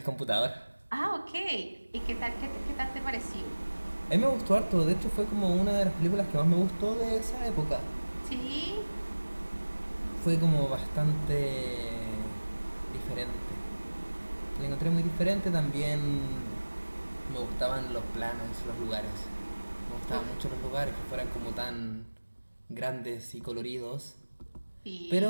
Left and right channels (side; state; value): both; inverted; correlation -1.00